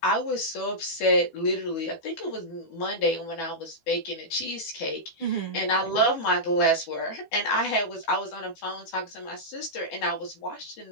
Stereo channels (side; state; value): right; late; 12 ms